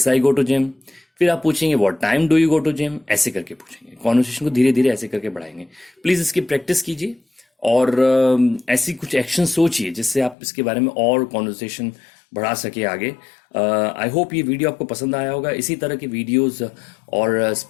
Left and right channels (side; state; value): right; drops out; at 10.4 s